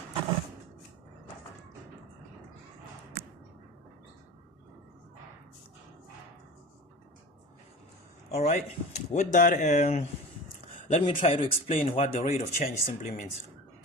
Alright, with that, let me try to explain what the rate of change simply means.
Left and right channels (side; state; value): both; normal; correlation 0.34